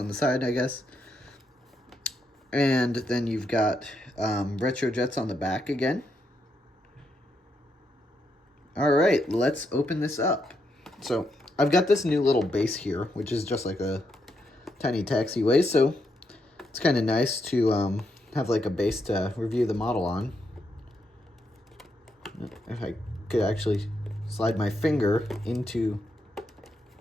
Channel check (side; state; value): both; normal; correlation 0.80